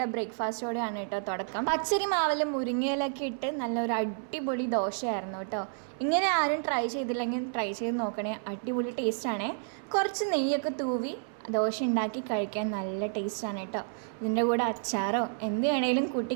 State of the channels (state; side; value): silent; left; 58 dB below the other